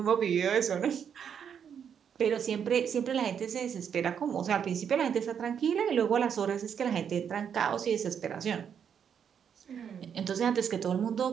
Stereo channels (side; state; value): left; quieter; 7.8 dB